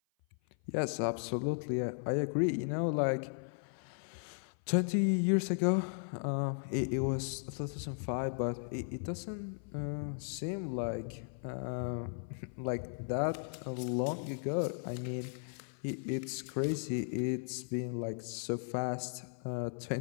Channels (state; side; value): silent; right; 54 dB below the other